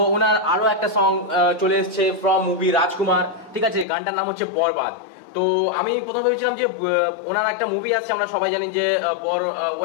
ওনার আরো একটা সং চলে এসেছে ফ্রম মুভি রাজকুমার, ঠিক আছে? গানটার নাম হচ্ছে বরবাদ। তো আমি প্রথমে ভেবেছিলাম যে ওনার একটা মুভি আসছে, আমরা সবাই জানি যে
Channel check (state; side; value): drops out; right; at 3.9 s